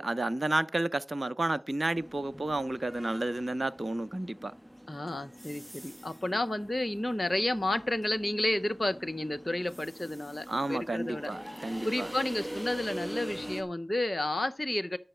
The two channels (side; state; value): both; normal; correlation 0.95